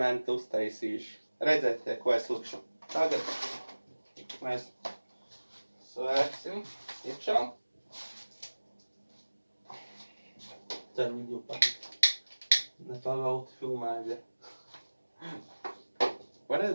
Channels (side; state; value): both; inverted; correlation -1.00